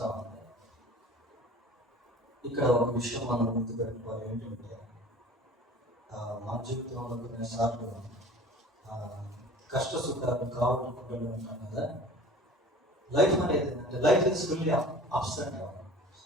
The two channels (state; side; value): normal; both; correlation 0.43